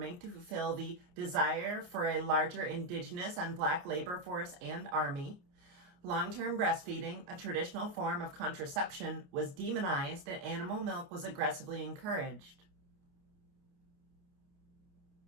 to fulfill the desire for a larger indigenous and black labor force and army. Long-term breastfeeding, a traditional form of contraception, was demonized and animal milk was aggressively encouraged.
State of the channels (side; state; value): left; late; 28 ms